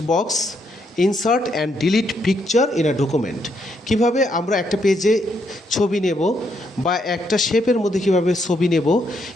box, insert and delete picture in a document। কিভাবে আমরা একটা পেজে ছবি নেব বা একটা শেপের মধ্যে কিভাবে ছবি নেব,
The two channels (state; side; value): normal; both; correlation 0.75